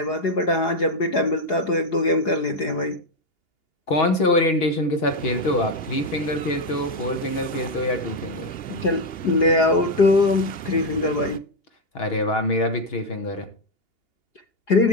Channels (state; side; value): late; right; 2.8 ms